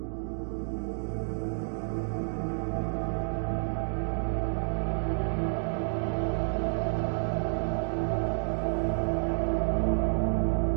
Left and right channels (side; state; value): left; silent; digital silence